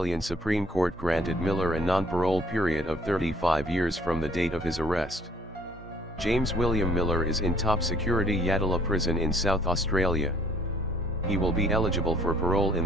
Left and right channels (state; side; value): normal; both; correlation 0.60